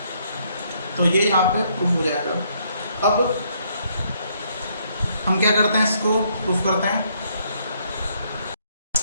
तो ये यहाँ पे प्रूफ हो जाएगा। अब हम क्या करते हैं, इसको प्रूफ करते हैं।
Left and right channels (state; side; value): inverted; both; correlation -0.70